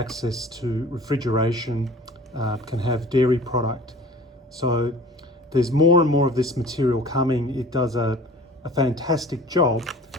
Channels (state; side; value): normal; both; correlation 0.45